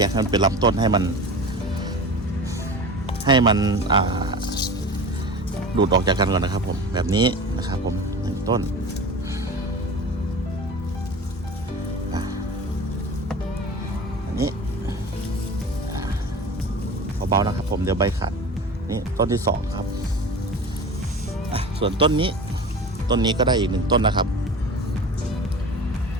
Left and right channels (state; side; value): normal; both; correlation 0.35